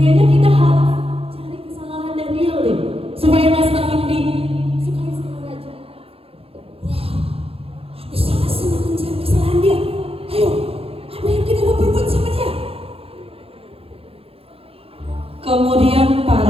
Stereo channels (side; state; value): left; late; 0.28 ms